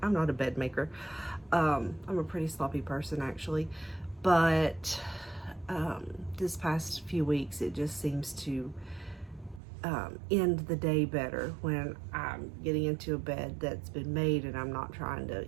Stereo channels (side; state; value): left; drops out; at 9.6 s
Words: I'm not a bed maker. I'm a pretty sloppy person actually, but this past few weeks it just seems to end the day better when I'm getting into a bed that's been made and I'm not trying